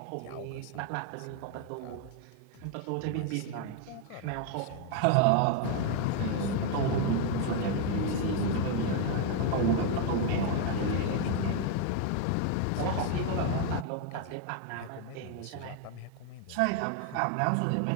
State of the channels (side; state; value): both; different; correlation 0.01